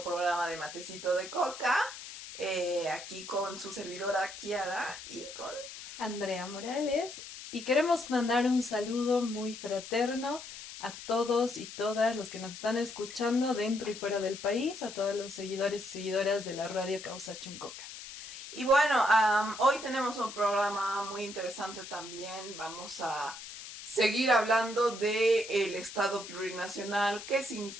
programa de Matecito de Coca. Aquí con su servidora Kiara y con Andrea Morales. Y queremos mandar un saludo muy fraterno a todos y todas los que nos están escuchando dentro y fuera del país, a todos los seguidores y seguidoras de la radio Causa Chuncoca. Y bueno, hoy tenemos un programa muy interesante también. Vamos a seguir hablando de el Estado plurinacional. ¿Qué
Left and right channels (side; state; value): left; noise; hiss, 12 dB below the sound